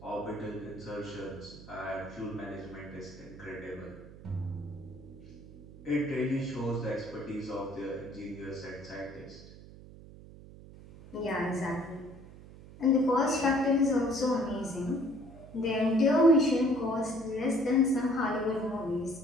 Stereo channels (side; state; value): right; noise; hum, 18 dB below the sound